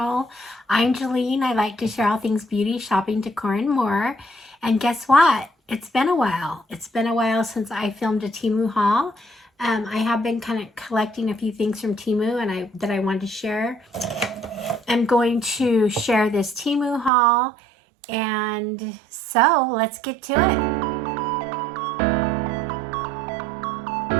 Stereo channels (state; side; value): drops out; left; at 17.1 s